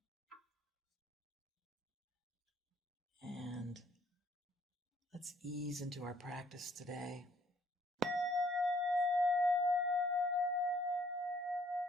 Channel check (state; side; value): normal; both; correlation 0.64